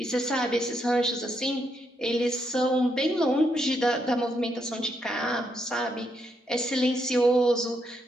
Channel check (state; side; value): normal; both; correlation 0.78